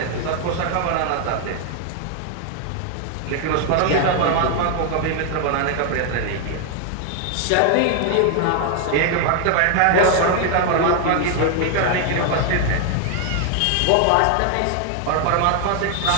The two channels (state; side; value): different; both; correlation 0.00